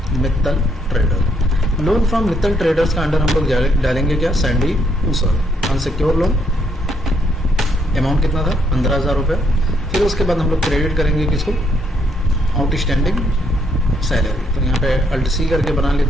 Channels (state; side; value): normal; both; correlation 0.73